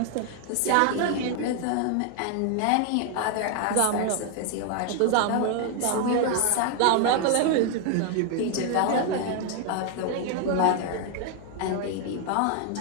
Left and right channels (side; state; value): both; different; correlation 0.01